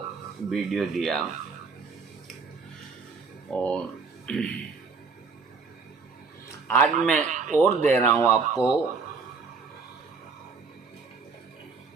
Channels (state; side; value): quieter; left; 4.9 dB